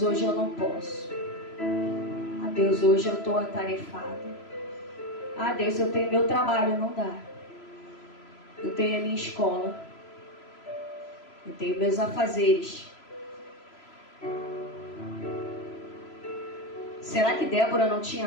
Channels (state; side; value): late; right; 3.0 ms